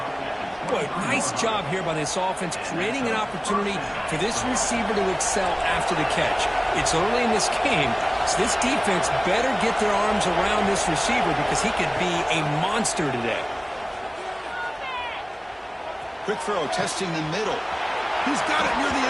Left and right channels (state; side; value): identical; both; correlation 1.00